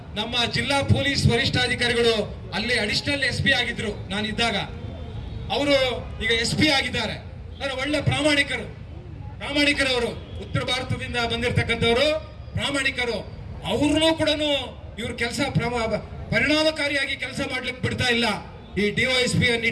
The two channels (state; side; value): identical; both; correlation 1.00